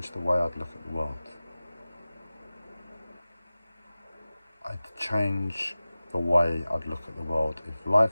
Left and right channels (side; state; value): both; inverted; correlation -0.96